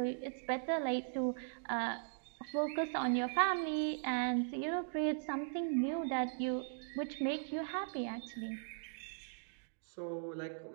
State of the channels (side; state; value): left; silent; digital silence